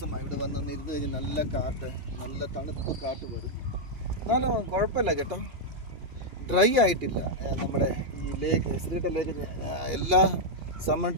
ഇവിടെ വന്നൊന്ന് ഇരുന്ന് കഴിഞ്ഞ്. നല്ല കാറ്റ്, നല്ല തണുപ്പ് കാറ്റ് വരും. എന്നാലും കുഴപ്പമില്ല കേട്ടോ, ഡ്രൈ ആയിട്ടില്ല. നമ്മുടെ ഈ ലേക്ക് ശ്രീകണ്ഠ ലേക്ക് എല്ലാ സമ്മർ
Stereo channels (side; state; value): left; late; 2.8 ms